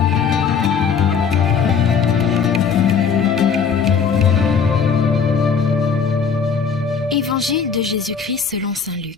Évangile de Jésus-Christ selon saint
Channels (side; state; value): right; quieter; 6.2 dB